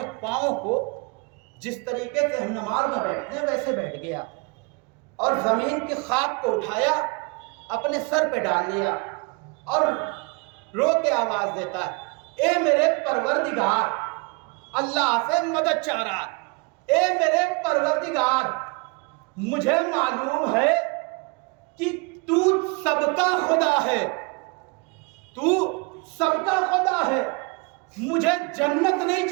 پاؤں کو جس طریقے سے ہم نماز میں بیٹھتے ہیں ویسے بیٹھ گیا، اور زمین کی خاک کو اٹھایا، اپنے سر پہ ڈال لیا، اور رو کے آواز دیتا ہے اے میرے پروردگار، اللہ سے مدد چاہ رہا ہے، اے میرے پروردگار مجھے معلوم ہے کہ تو سب کا خدا ہے، تو سب کا خدا ہے، مجھے جنت نہیں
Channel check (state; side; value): quieter; left; 29.9 dB